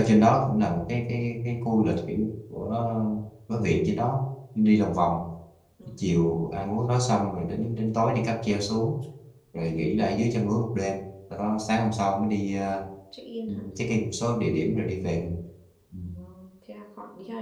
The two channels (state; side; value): identical; both; correlation 1.00